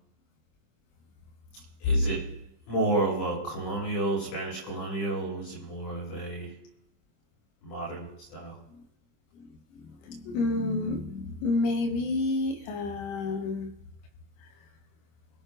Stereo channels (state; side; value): late; right; 25 ms